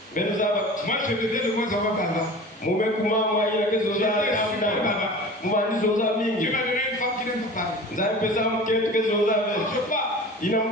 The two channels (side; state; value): both; normal; correlation 0.38